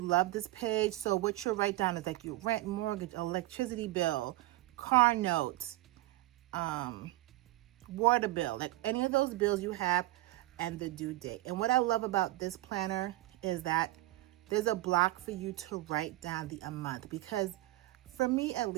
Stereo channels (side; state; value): left; quieter; 17.5 dB